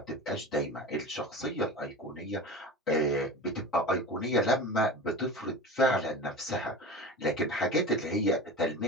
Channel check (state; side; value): normal; both; correlation 0.31